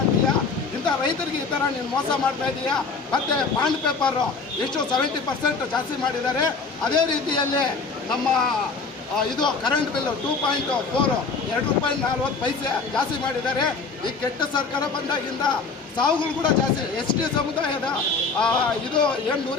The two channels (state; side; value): quieter; right; 4.5 dB